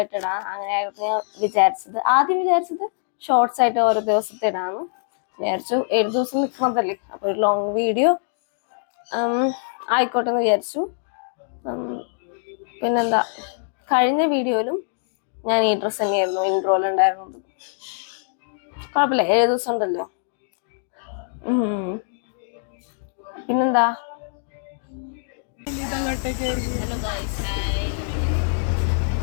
ഇടാം. അങ്ങനെയായിരുന്നു ഞാൻ വിചാരിച്ചത്. ആദ്യം വിചാരിച്ചത് ഷോർട്സ് ആയിട്ട് ഓരോ ദിവസത്തെ ഇടാമെന്ന് വിചാരിച്ചു. 7 ദിവസം നിൽക്കുന്നതല്ലേ, അപ്പോൾ ഒരു ലോങ് വീഡിയോ ആയിക്കോട്ടെ എന്ന് വിചാരിച്ചു. പിന്നെന്താ, കഴിഞ്ഞ വീഡിയോയിലും ഞാൻ ഈ ഡ്രസ്സ് തന്നെയായിരുന്നു ഇൻട്രോയിലുണ്ടായിരുന്നത്. കുഴപ്പമില്ല, 7 ദിവസം ഉണ്ടല്ലോ. പിന്നെന്താ, ഹലോ ഗൈസ്, ഹായ്.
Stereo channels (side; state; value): right; silent; digital silence